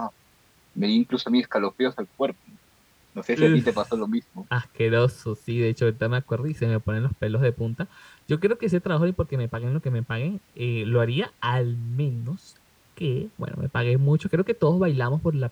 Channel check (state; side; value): identical; both; correlation 1.00